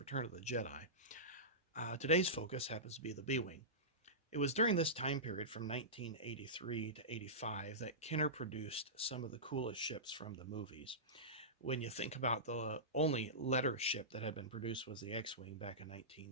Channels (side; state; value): both; normal; correlation -0.18